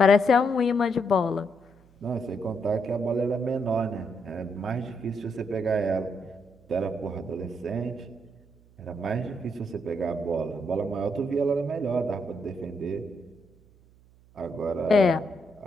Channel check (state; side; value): noise; right; hum, 28 dB below the sound